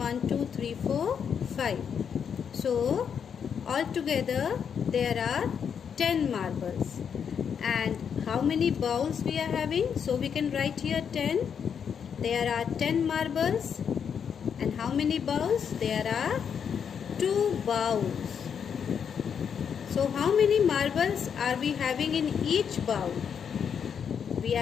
2, 3, 4, 5. So altogether there are 10 marbles. And how many bowls we are having? So we can write here 10. There are 10 marbles. And how many bowls? There are 2 bowls. So how many marbles are we having in each bowl? We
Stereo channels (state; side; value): quieter; right; 7.3 dB